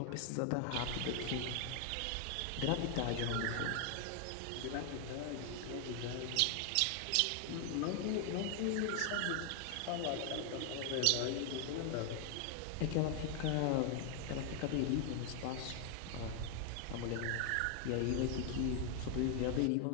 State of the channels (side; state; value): both; different; correlation 0.00